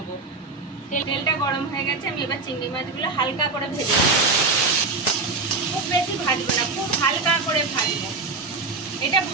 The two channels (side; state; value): left; quieter; 3.9 dB